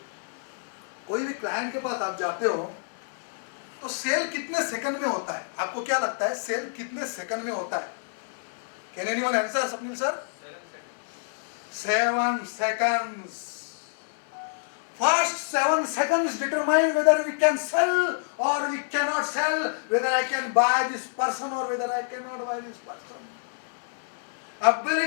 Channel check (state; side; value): silent; right; digital silence